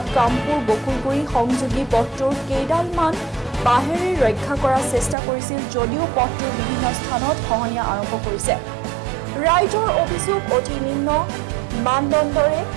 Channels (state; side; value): drops out; left; at 5.2 s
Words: কামপুৰ বকুলগুৰি সংযোগী পথটোৰ কেইডালমান বাঁহেৰে ৰক্ষা কৰাৰ চেষ্টা কৰিছিল যদিও পথটোৰ বিভিন্ন স্থানত খহনীয়া আৰম্ভ কৰিছে। ৰাইজৰ অভিযোগ অতি নিম্ন মানদণ্ডৰে